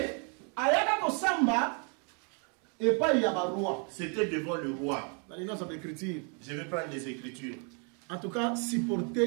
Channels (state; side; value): quieter; left; 38.1 dB